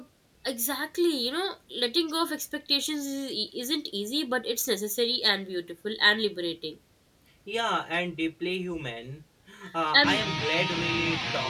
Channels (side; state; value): both; identical; correlation 1.00